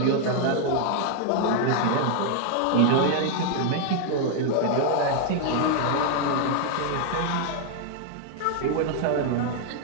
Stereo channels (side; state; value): both; different; correlation 0.00